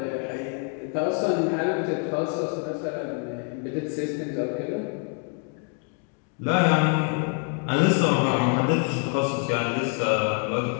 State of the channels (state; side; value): quieter; right; 39.1 dB